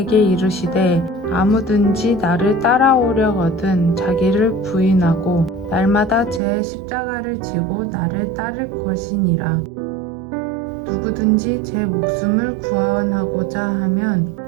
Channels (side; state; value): left; drops out; at 6.4 s